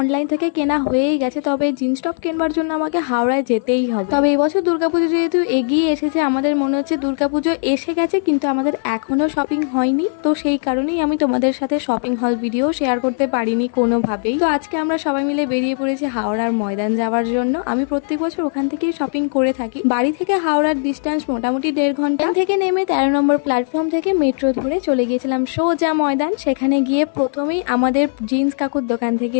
অনলাইন থেকে কেনা হয়েই গেছে, তবে জিন্স টপ কেনবার জন্য আমাকে হাওড়ায় যেতেই হবে। তবে এবছর দুর্গাপুজো যেহেতু এগিয়ে এসেছে, আমাদের মনে হচ্ছে দুর্গাপুজো এসে গেছে কিন্তু আমাদের এখনো শপিং হয়নি। তো সেই কারণেই আমি তোমাদের সাথে শপিং হল ভিডিও শেয়ার করতে পারিনি কোনোভাবেই। তো আজকে আমরা সবাই মিলে বেরিয়ে পড়েছি হাওড়ার ময়দান যাওয়ার জন্য। আমি প্রত্যেক বছর ওখান থেকেই শপিং করে থাকি। বাড়ি থেকে হাওড়ার ডিস্টেন্স মোটামুটি 1.5 ঘন্টা। থেকে নেমে 13 নম্বর প্ল্যাটফর্ম থেকে মেট্রো ধরে চলে গিয়েছিলাম সোজা ময়দান। সেখানে গিয়ে প্রথমেই আমাদের জিন্স কাকুর দোকান থেকে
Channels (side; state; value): right; silent; digital silence